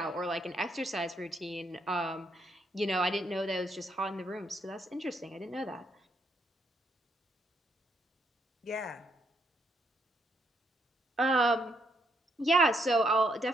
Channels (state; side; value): normal; both; correlation 0.74